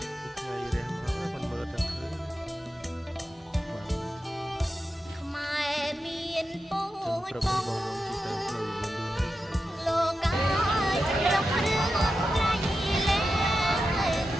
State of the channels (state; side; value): normal; both; correlation 0.90